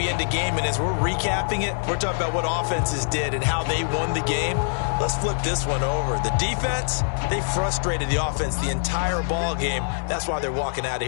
end a game, and as we're recapping it, we're talking about what offenses did and how they won the game. Let's flip this one over. The defense, they frustrated the offense the entire ball game. That's why they're walking out of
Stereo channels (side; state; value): right; silent; digital silence